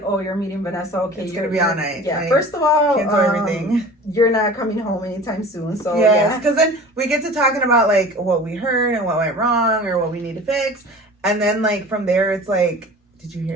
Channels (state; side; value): normal; both; correlation 0.41